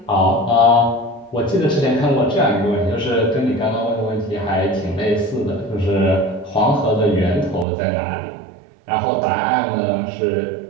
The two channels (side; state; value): left; drops out; at 7.7 s